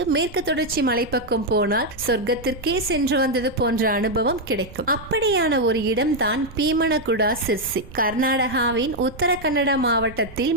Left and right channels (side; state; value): right; noise; rumble, 18 dB below the sound